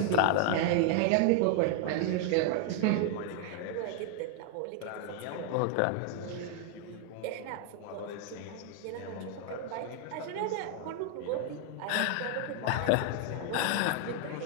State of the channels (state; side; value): different; both; correlation 0.00